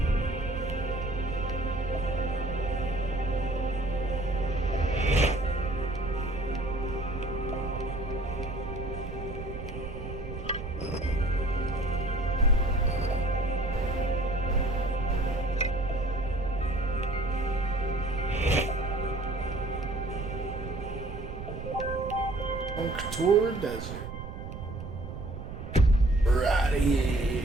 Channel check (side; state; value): right; noise; rumble, 9 dB below the sound